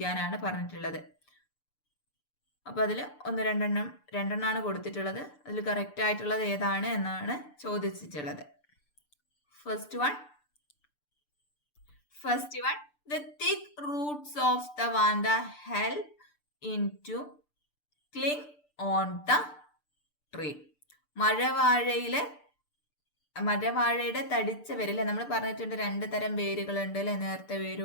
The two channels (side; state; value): right; late; 6.8 ms